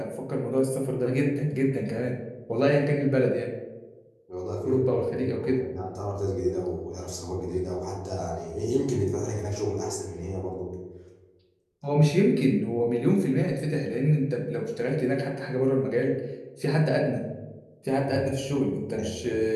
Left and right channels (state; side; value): identical; both; correlation 1.00